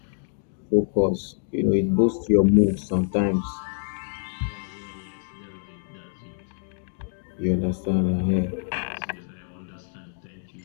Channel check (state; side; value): silent; right; digital silence